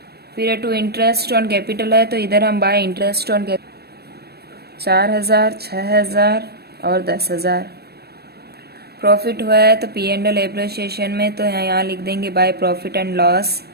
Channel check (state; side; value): late; left; 0.47 ms